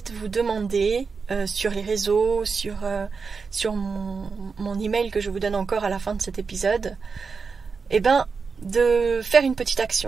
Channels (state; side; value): quieter; left; 5.1 dB